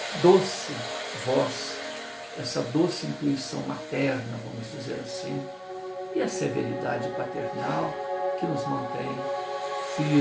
doce voz, essa doce intuição materna, vamos dizer assim, e a severidade paternal que nos mantém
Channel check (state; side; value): identical; both; correlation 1.00